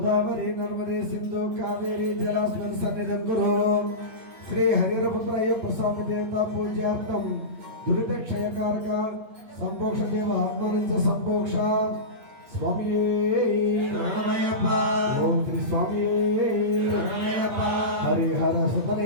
నర్మదే సింధు కావేరీ జలాస్మిన్ సన్నిధం కురు శ్రీ హరిరపుత్రయ ప్రసాద దేవత పూజార్థం దురిత క్షయకారక సంపోక్ష దేవ ఆత్మనంచ సంపోక్ష స్వామి శరణమయ్యప్ప ఓం శ్రీ స్వామి శరణమయ్యప్ప హరిహర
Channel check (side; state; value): left; late; 8.6 ms